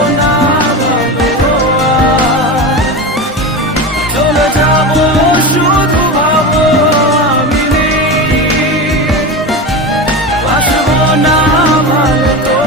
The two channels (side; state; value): both; normal; correlation 0.23